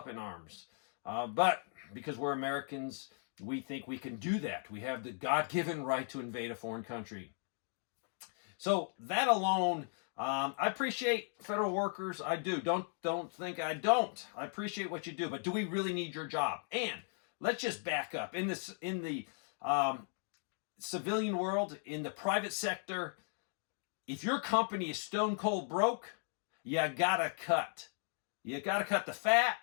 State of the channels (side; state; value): right; silent; 53 dB below the other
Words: in arms. But because we're Americans, we think we can do that. We have the God-given right to invade a foreign country. So that alone, I appreciate federal workers. I do. Don't think I don't. I appreciate what you do. But do we really need your job? And let's just back up. In the civilian world, in the private sector, if your company is stone cold broke, you gotta cut. You got to cut the fat,